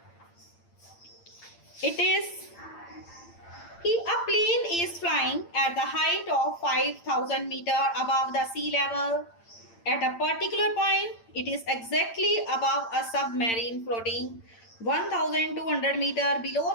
It is a plane is flying at the height of 5,000 meter above the sea level. At a particular point, it is exactly above a submarine floating 1,200 meter below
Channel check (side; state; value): right; late; 8.8 ms